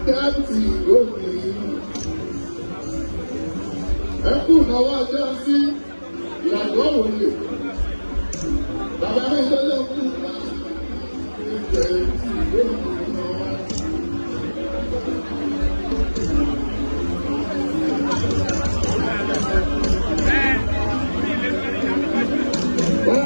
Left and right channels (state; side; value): inverted; both; correlation -1.00